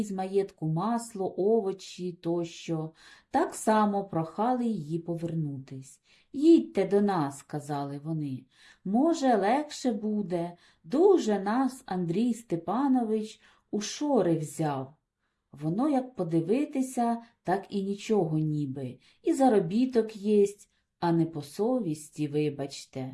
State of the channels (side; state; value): both; identical; correlation 1.00